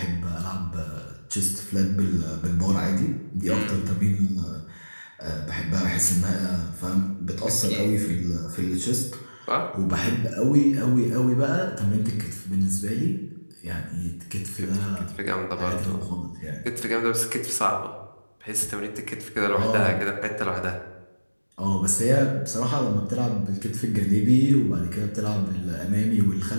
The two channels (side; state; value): both; inverted; correlation -1.00